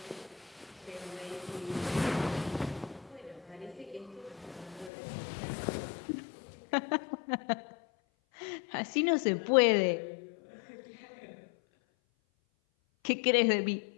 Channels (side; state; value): right; drops out; at 4.9 s